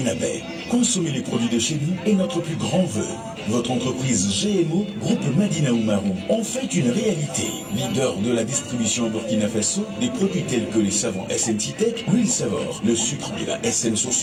Consommez les produits de chez nous est notre plus grand vœu. Votre entreprise GMO, groupe Madina Oumarou, en fait une réalité. Leader de la distribution au Burkina Faso, des produits tels que les savons SNC Tech, l'huile Savor, le sucre de la SN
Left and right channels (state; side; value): identical; both; correlation 1.00